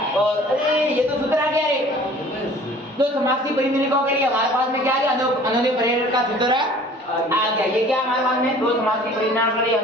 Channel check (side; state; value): both; normal; correlation 0.49